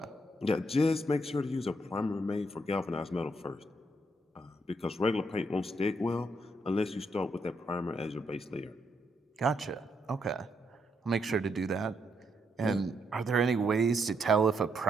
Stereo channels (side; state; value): both; normal; correlation 0.77